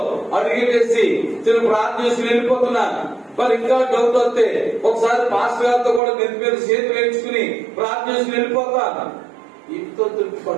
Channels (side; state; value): left; drops out; at 6.0 s